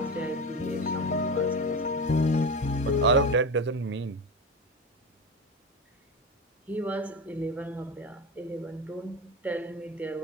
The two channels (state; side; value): normal; both; correlation 0.22